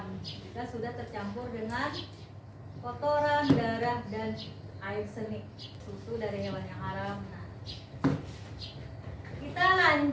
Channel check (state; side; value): identical; both; correlation 1.00